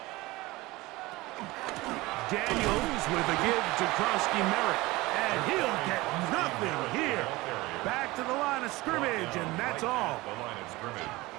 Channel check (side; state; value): left; quieter; 20.7 dB